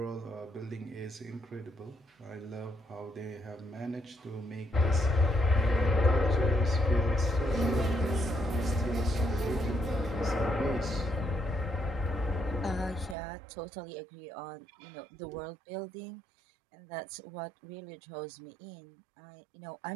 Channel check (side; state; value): left; drops out; at 13.2 s